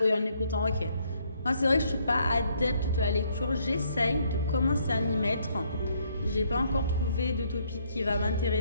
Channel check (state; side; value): inverted; both; correlation -0.69